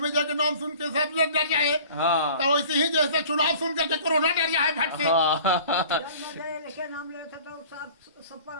के नाम सुन के सब लोग डर जाए। हाँ तो वैसे ही जैसे चुनाव सुन करके कोरोना डर जाए भट से। लेके नाम लेता तो सब पर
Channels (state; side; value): inverted; both; correlation -0.45